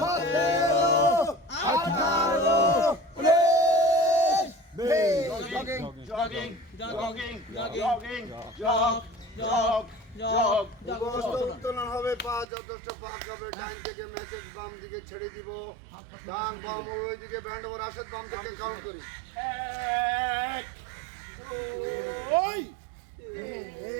18 উত্তোলন হবে পা যথেষ্ট পাক হবে ডাইন থেকে ম্যাচের বাম দিকে ছেড়ে দিব ডান বাম ওই দিকে ব্যান্ড ওভার আসে বাম থেকে কাউন্ট করি 1 2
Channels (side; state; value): left; drops out; at 12.5 s